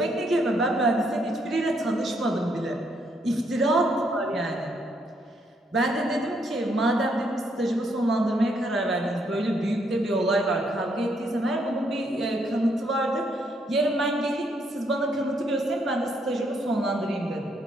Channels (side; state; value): both; normal; correlation 0.73